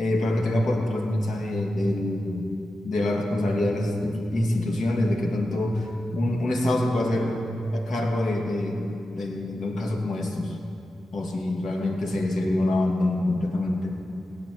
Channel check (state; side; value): normal; both; correlation 0.91